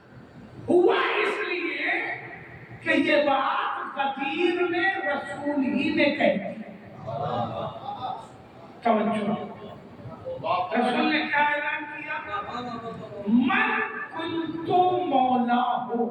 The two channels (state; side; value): identical; both; correlation 1.00